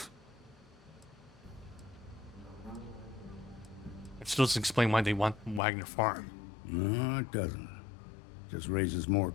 It still doesn't explain why they want Wagner Farm. No, it doesn't. Just raises more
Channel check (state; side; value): drops out; right; at 5.6 s